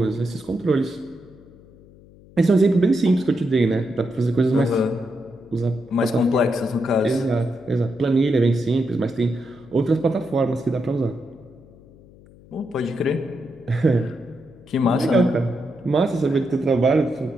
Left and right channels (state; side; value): noise; left; hum, 24 dB below the sound